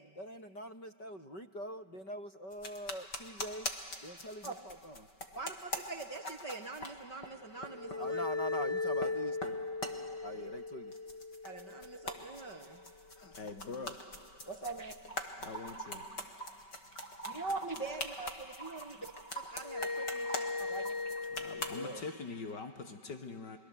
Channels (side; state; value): right; late; 5.2 ms